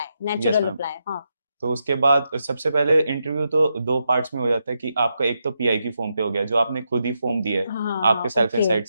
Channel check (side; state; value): both; inverted; correlation -0.84